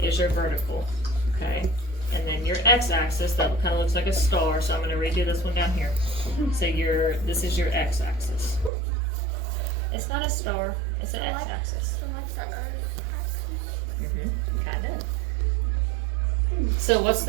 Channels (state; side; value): drops out; left; at 8.7 s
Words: is your vertical, okay? And then your x-axis, that kind of looks like a star, so I'm gonna redo this one down here. So this is your x-axis. It's not a star, it's an x-axis. Kind of. So what's